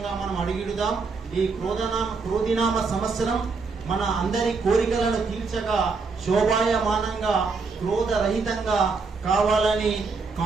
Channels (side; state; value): left; quieter; 4.5 dB